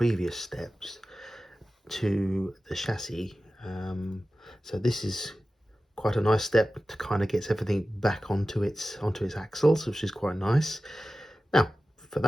steps to the chassis. So this is quite a nice step to kind of get everything back onto its axles, which is quite nice. Now for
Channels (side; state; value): both; normal; correlation 0.95